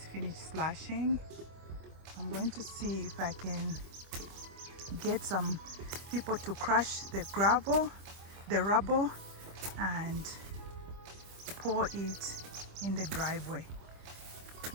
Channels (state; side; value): late; left; 25 ms